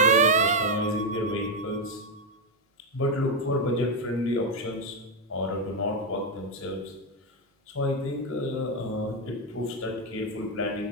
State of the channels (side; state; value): both; normal; correlation 0.04